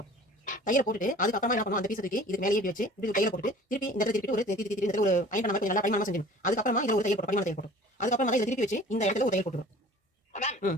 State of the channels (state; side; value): normal; both; correlation 0.46